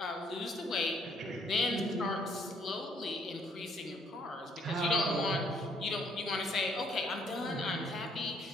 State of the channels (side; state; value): both; normal; correlation 0.66